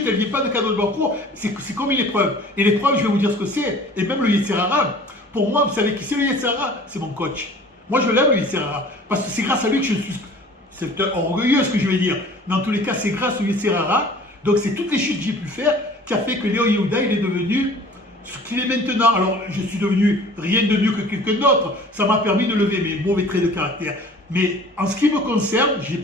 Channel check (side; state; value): both; normal; correlation 0.47